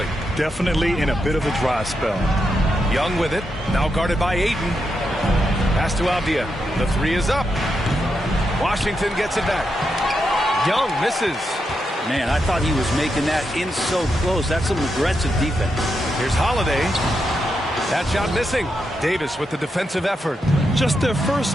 Definitely in a bit of a dry spell. Young with it. Now guarded by Ayton. Pass to Avdia. The 3 is up. Washington gets it back. Young misses. Man, I thought he was making that in so close. That's some aggressive defense. Here's Holiday. That shot missing. Davis with the defensive effort. Just their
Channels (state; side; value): normal; both; correlation 0.84